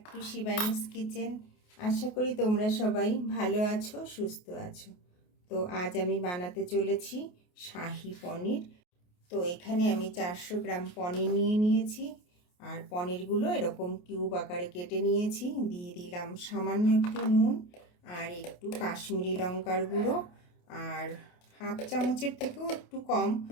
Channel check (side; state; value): right; late; 28 ms